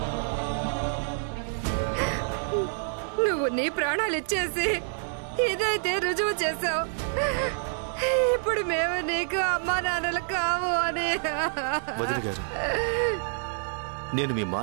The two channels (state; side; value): silent; left; 60 dB below the other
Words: నువ్వు నీ ప్రాణాలు ఇచ్చేసి ఇదైతే రుజువు చేసావు. ఇప్పుడు మేము నీకు అమ్మా నాన్నలు కావు అని. వదిన గారు, నేను మీ